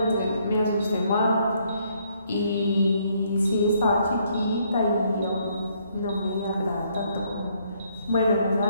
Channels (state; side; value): inverted; both; correlation -0.69